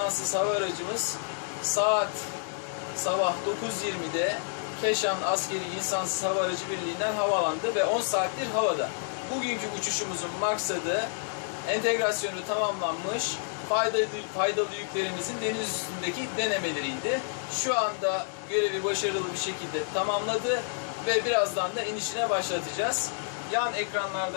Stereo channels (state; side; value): silent; right; digital silence